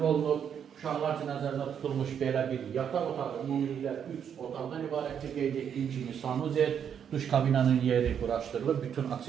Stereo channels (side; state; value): left; quieter; 8.2 dB